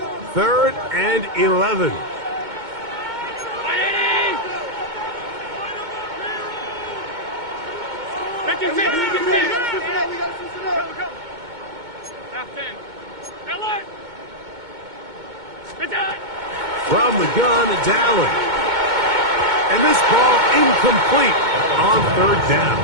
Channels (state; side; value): late; left; 2.2 ms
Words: 3rd and 11. From the gun, it's Allen. And this ball incomplete on 3rd down.